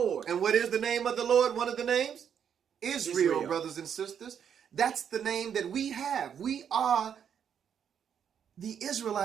And what is the name of the Lord? One of the names? Israel, brothers and sisters. That's the name that we have. We are the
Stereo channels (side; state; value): left; quieter; 8.2 dB